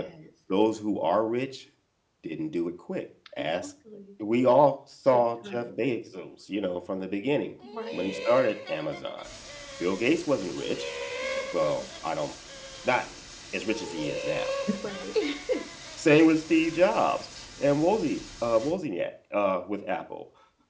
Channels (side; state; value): both; identical; correlation 1.00